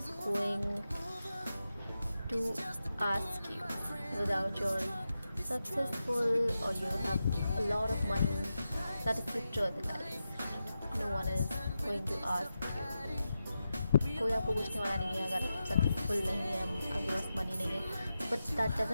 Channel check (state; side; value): inverted; both; correlation -0.90